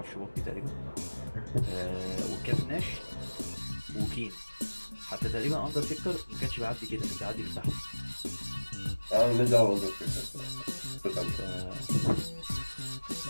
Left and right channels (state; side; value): inverted; both; correlation -1.00